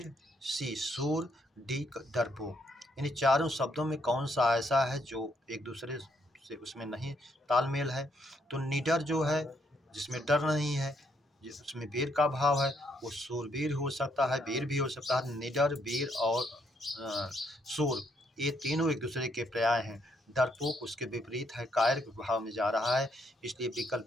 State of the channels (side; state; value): both; normal; correlation 0.73